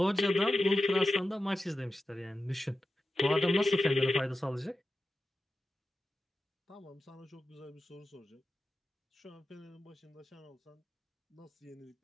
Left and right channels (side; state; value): both; normal; correlation 0.92